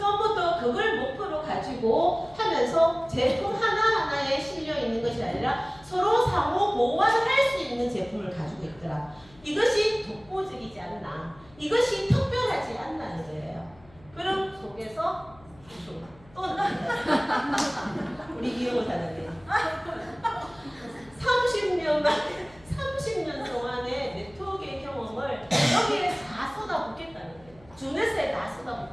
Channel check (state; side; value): noise; left; hum, 26 dB below the sound